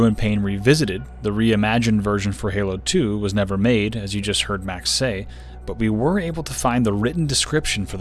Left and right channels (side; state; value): both; identical; correlation 1.00